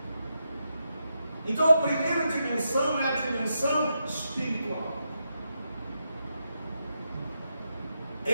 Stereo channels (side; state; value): both; inverted; correlation -0.84